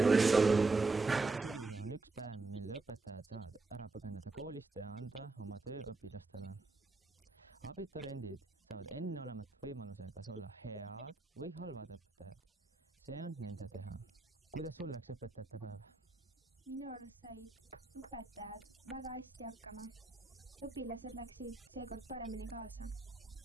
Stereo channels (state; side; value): quieter; left; 3.6 dB